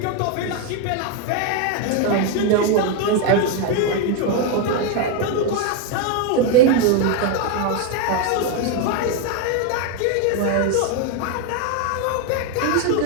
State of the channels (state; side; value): different; both; correlation 0.01